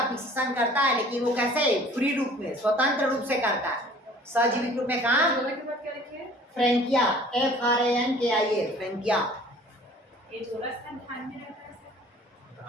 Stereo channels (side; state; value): both; normal; correlation 0.50